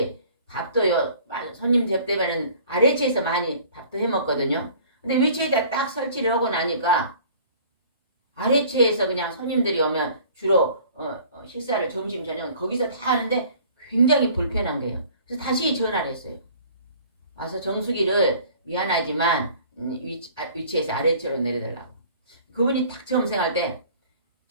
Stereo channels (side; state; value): both; inverted; correlation -0.50